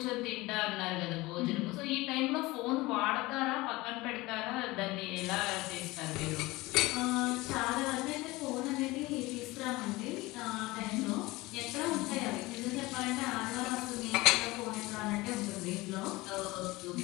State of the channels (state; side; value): quieter; right; 20.9 dB